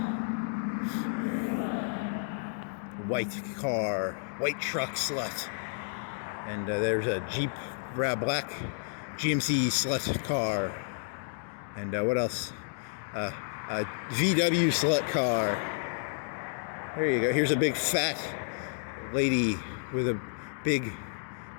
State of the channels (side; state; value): right; silent; digital silence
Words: White car, white truck slut. And there's a Jeep, black GMC slut car. And what else? A VW slut car. There you go. Here's a big fat lady with a big